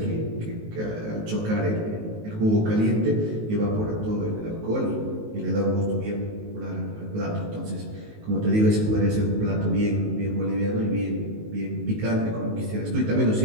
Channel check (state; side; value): late; left; 19 ms